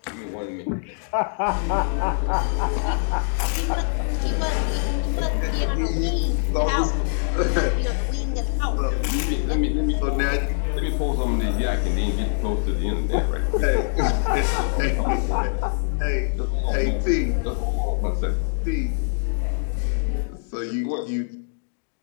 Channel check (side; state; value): right; silent; digital silence